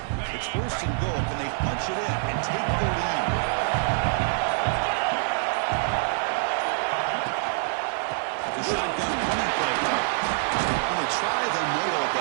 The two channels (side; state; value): left; silent; 61 dB below the other